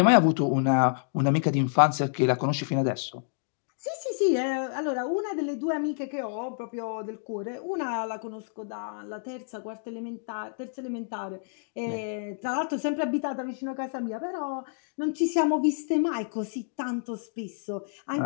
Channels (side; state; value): right; silent; digital silence